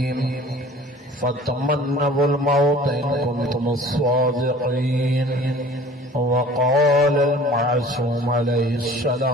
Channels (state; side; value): normal; both; correlation 0.46